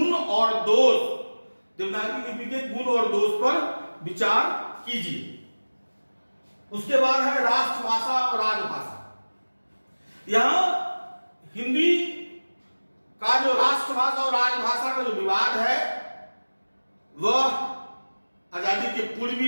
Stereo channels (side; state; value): both; inverted; correlation -1.00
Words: और दोष, देवनागरी लिपि के गुण और दोष पर विचार कीजिए। उसके बाद है राष्ट्रभाषा और राजभाषा। यहां हिंदी का जो राष्ट्रभाषा और राजभाषा का जो विवाद है वह आजादी के पूर्व